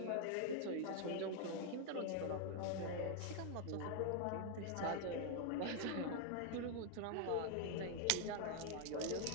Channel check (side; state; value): both; different; correlation 0.00